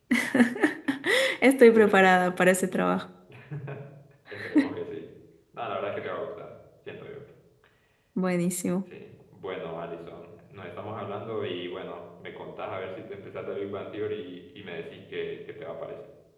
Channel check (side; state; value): both; identical; correlation 1.00